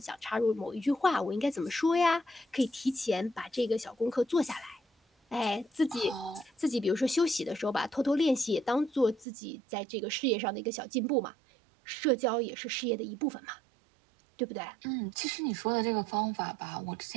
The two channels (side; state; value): left; drops out; at 9.2 s